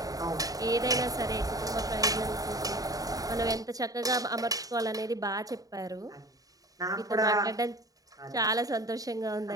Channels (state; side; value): late; left; 0.18 ms